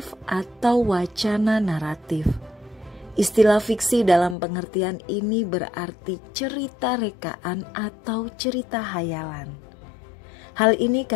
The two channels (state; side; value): drops out; right; at 4.4 s